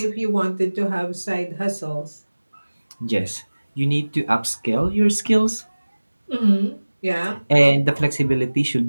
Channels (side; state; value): both; inverted; correlation -1.00